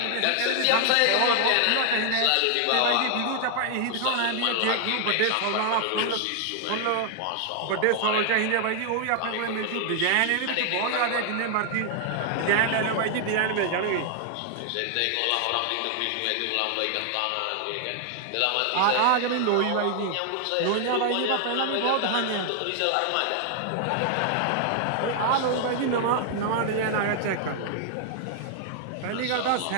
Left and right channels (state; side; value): different; both; correlation 0.00